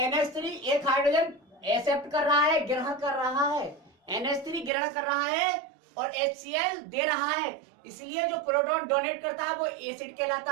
NH3 एक हाइड्रोजन एक्सेप्ट कर रहा है, ग्रहण कर रहा है, NH3 ग्रहण कर रहा है और HCl दे रहा है। इसलिए जो प्रोटॉन डोनेट करता है वो एसिड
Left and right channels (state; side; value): drops out; left; at 4.7 s